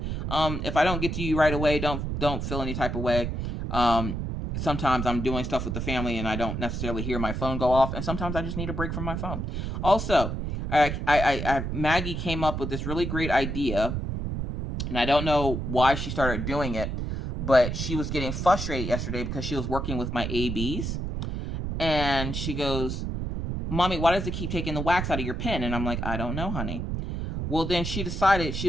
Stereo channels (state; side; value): noise; right; rumble, 3 dB below the sound